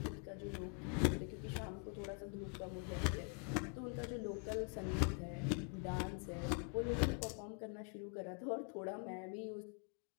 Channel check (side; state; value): right; quieter; 38.1 dB